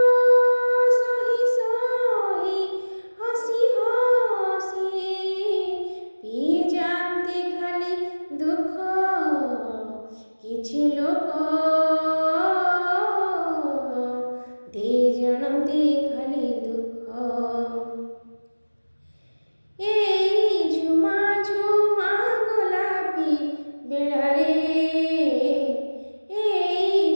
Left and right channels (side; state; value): both; inverted; correlation -1.00